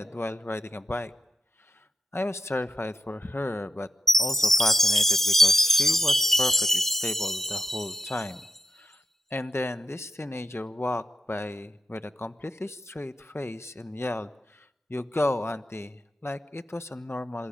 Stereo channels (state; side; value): normal; both; correlation 0.86